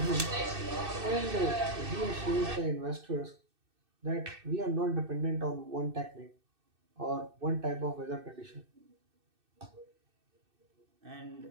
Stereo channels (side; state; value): left; late; 2.6 ms